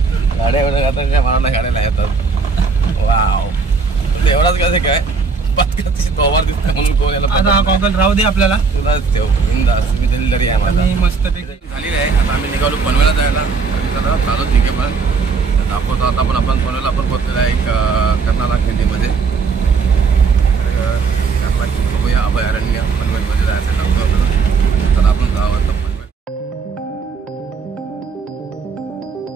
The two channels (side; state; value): left; quieter; 4.8 dB